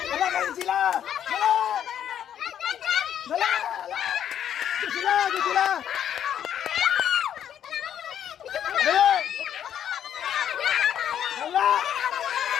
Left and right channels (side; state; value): right; quieter; 9.8 dB